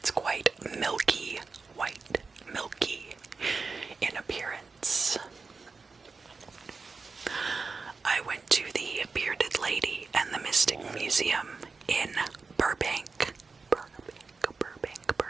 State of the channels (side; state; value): left; quieter; 4.5 dB